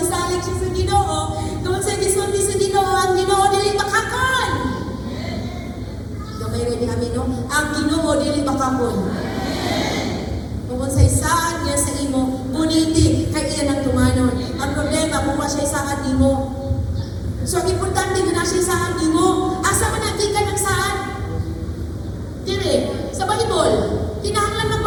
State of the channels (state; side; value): identical; both; correlation 1.00